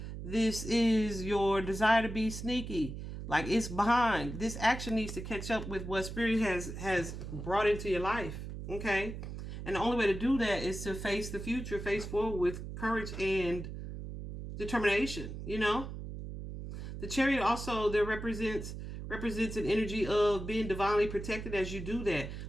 This is your desire to be sneaky. Like, it's behind. This action needs to catch up with what Spirit has brought into your life. Okay? And the only way to do that is to face the future, face forward with courage and determination, you know? The Chariot also there represents an energy of being divinely protected as you do that.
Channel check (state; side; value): noise; right; hum, 8 dB below the sound